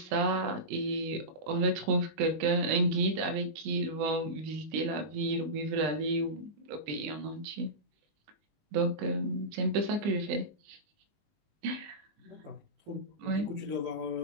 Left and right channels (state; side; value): late; left; 20 ms